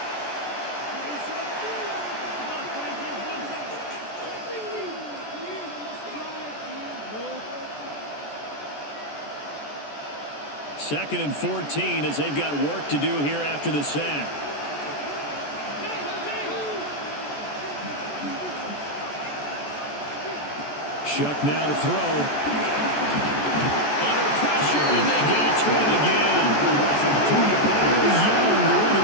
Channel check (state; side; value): late; right; 14 ms